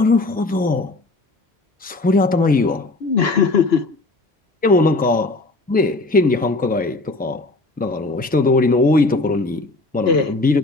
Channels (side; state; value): right; quieter; 3.0 dB